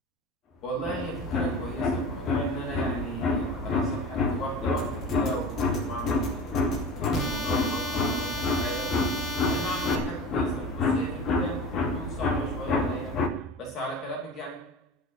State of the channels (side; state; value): both; normal; correlation 0.34